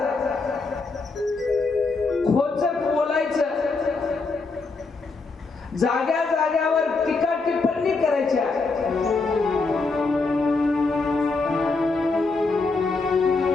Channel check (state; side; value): quieter; right; 3.9 dB